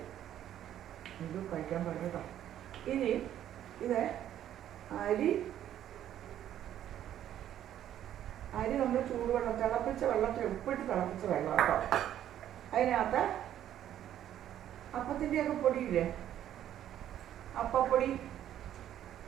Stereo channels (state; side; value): quieter; left; 11.3 dB